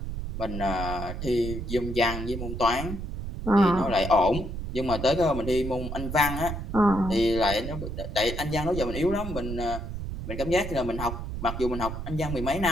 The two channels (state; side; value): noise; right; rumble, 6 dB below the sound